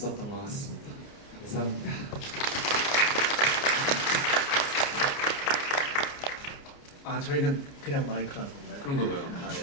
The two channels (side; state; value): right; late; 29 ms